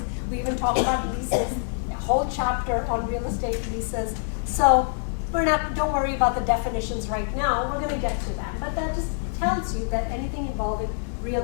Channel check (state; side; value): silent; right; digital silence